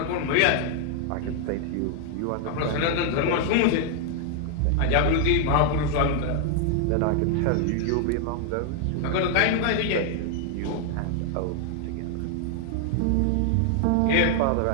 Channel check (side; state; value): both; different; correlation 0.00